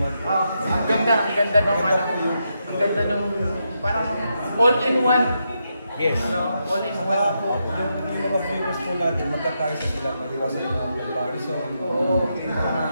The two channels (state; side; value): inverted; both; correlation -0.83